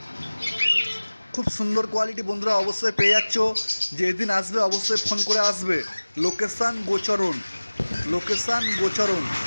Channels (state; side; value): inverted; both; correlation -1.00